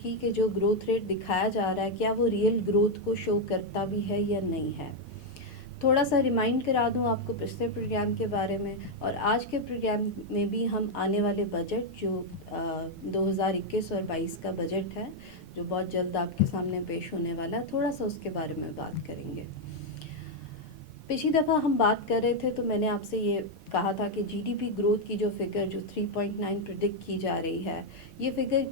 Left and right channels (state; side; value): normal; both; correlation 0.01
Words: کی کہ جو گروتھ ریٹ دکھایا جا رہا ہے کیا وہ ریئل گروتھ کو شو کرتا بھی ہے یا نہیں ہے. تھوڑا سا ریمائنڈ کرا دوں آپ کو پچھلے پروگرام کے بارے میں، اور آج کے پروگرام میں بھی ہم آنے والے بجٹ جو 2021 اور 22 کا بجٹ ہے جو بہت جلد آپ کے سامنے پیش ہونے والا ہے، تھوڑا سا اس کے بارے میں بات کریں گے. پچھلی دفعہ ہم بات کر رہے تھے تو میں نے آپ سے یہ کہا تھا کہ جی ڈی پی گروتھ کی جو فگر جو 3.9 پریڈکٹ کی جا رہی ہے، یہ فگر